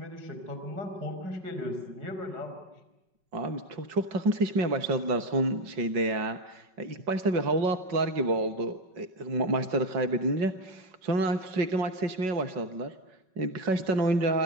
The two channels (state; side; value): late; left; 5.4 ms